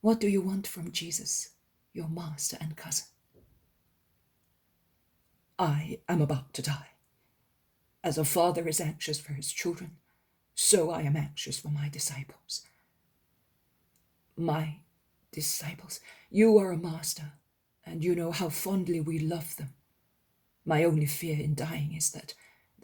What do you want from Jesus, your master and cousin?" "I am about to die. As a father is anxious for his children, so I am anxious for my disciples." "My disciples? You are a master, and you know how fondly we love them. My only fear in dying is that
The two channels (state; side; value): identical; both; correlation 1.00